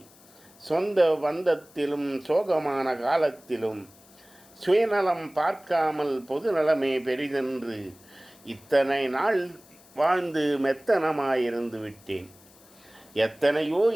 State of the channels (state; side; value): noise; left; hiss, 26 dB below the sound